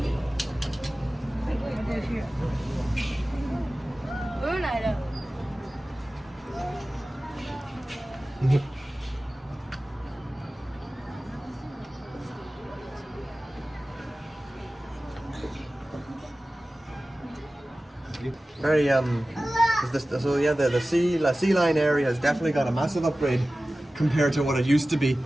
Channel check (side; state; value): both; normal; correlation 0.96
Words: 过去。我又来了。Very so yeah, the sea line area has definitely got a massive upgrade compared to what it used to be.